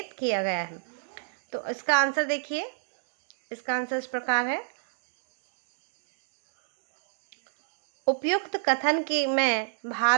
किया गया है। तो इसका आंसर देखिए, इसका आंसर इस प्रकार है। उपयुक्त कथन के में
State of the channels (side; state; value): left; silent; digital silence